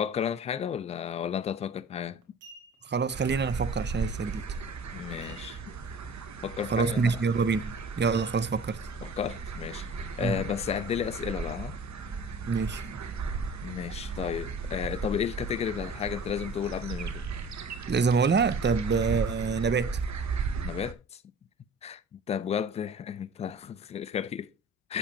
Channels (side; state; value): both; normal; correlation 0.43